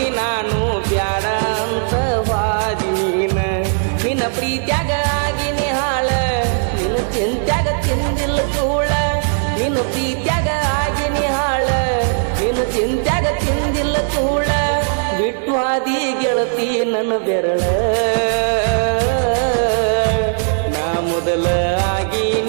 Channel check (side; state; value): left; silent; 68 dB below the other